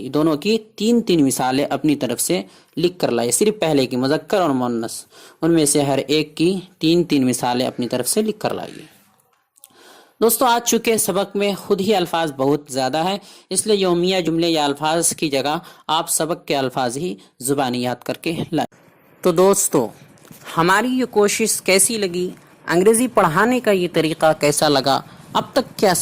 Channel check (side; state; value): both; identical; correlation 1.00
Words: کی 3 مثالیں اپنی طرف سے لکھ کر لائے. صرف پہلے کی مذکر اور مؤنث، ان میں سے ہر ایک کی 3 مثالیں اپنی طرف سے لکھ کر لائیے. دوستو آج چونکہ سبق میں خود ہی الفاظ بہت زیادہ ہیں، اس لیے یومیہ جملے یا الفاظ کی جگہ آپ سبق کے الفاظ ہی زبانی یاد کر کے لائیں. تو دوستو ہماری یہ کوشش کیسی لگی، انگریزی پڑھانے کا یہ طریقہ کیسا لگا، اب تک کے